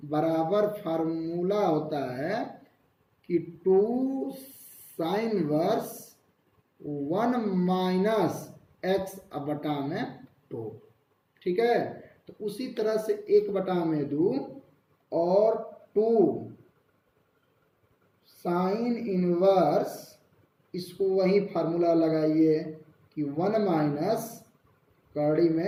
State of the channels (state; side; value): identical; both; correlation 1.00